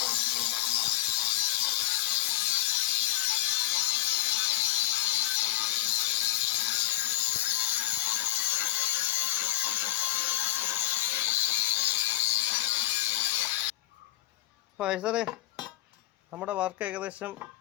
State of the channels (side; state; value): right; quieter; 15.8 dB